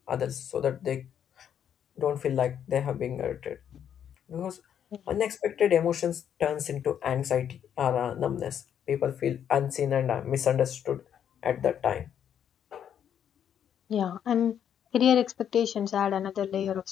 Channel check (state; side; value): quieter; right; 9.0 dB